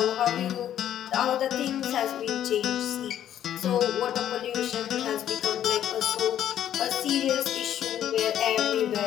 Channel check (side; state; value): right; quieter; 10.8 dB